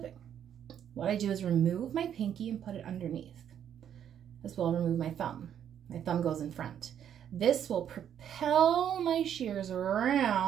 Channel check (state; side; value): quieter; left; 9.4 dB